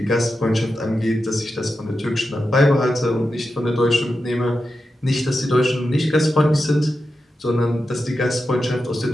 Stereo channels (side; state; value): both; normal; correlation 0.90